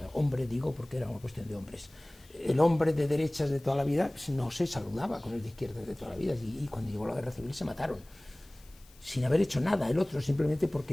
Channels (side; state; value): left; noise; hiss, 27 dB below the sound